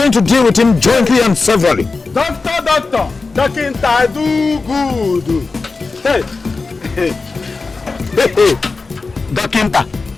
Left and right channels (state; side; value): quieter; right; 4.1 dB